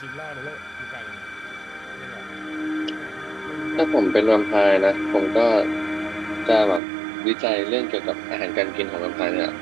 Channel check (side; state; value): left; drops out; at 6.8 s